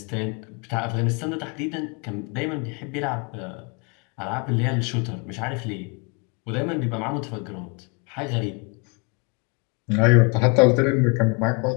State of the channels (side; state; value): right; quieter; 32.0 dB